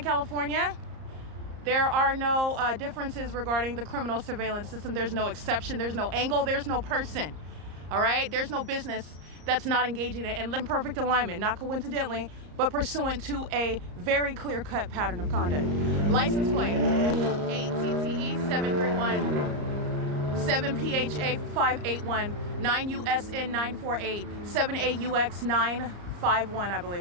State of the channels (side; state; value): left; late; 34 ms